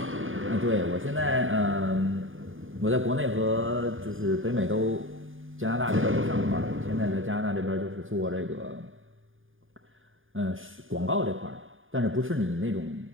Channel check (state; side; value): late; left; 0.59 ms